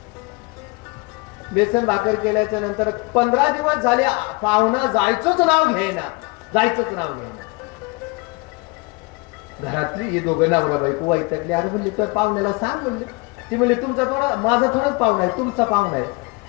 बेसन भाकर केल्याच्या नंतर 15 दिवस झाले पाहुणा जायचंच नाव घ्यायना. घरातली हे दोघं नवरा बायको वैतागली. अरे म्हणले तर पाहुण्याला सांग म्हणले. ती म्हणले तुमचा थोडा, माझा थोडाच पाहुणा आहे, तुमचा पाहुणा आहे.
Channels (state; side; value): quieter; right; 27.4 dB